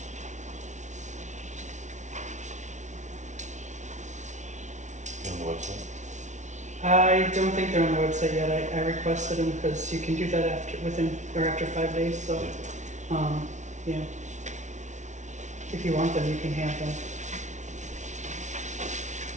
the website. I don't think they're on the website yet. I requested them because you can do that after 5 days, so, yeah. If you want them, you can have them.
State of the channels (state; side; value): late; left; 0.35 ms